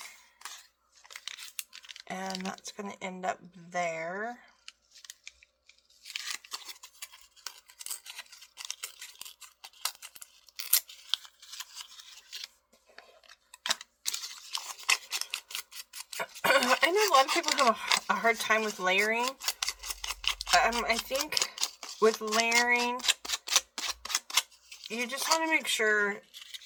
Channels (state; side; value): identical; both; correlation 1.00